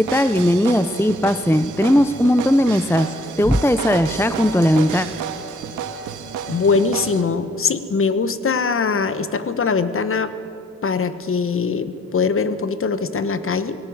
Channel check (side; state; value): both; normal; correlation 0.62